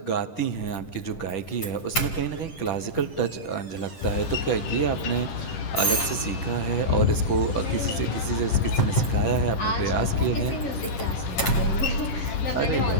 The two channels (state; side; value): late; right; 10 ms